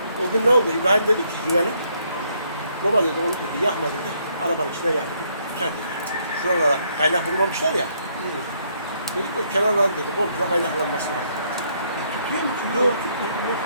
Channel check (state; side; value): inverted; both; correlation -0.71